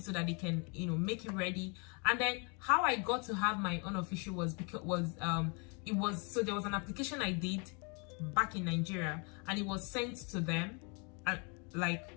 that they can, make it ready. And then how I got to have my unofficial was because there was an application I did back in Nigeria, and it was sent to them,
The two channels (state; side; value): quieter; right; 33.9 dB